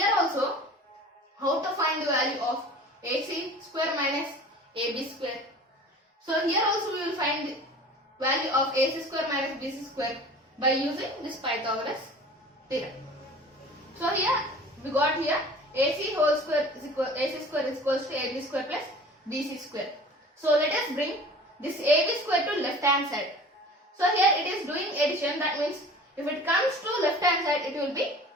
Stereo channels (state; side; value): normal; both; correlation 0.43